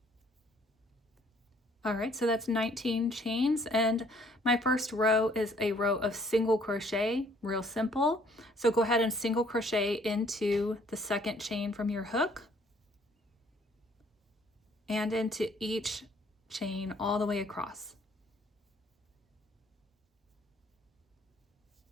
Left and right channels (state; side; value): normal; both; correlation 0.61